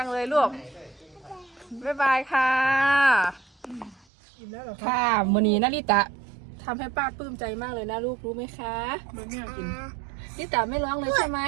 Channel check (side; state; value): left; drops out; at 4.0 s